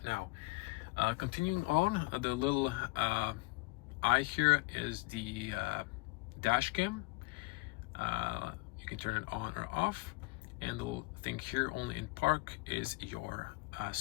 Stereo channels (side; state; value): right; quieter; 24.7 dB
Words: Now, continuing on, the little eye here is the dash cam. You can turn it on or off, and the little thing here, only in park, is your